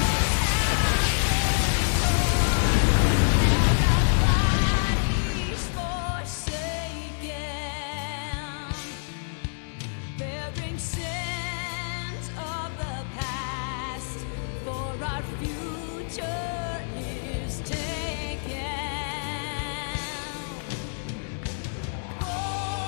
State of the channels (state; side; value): silent; right; digital silence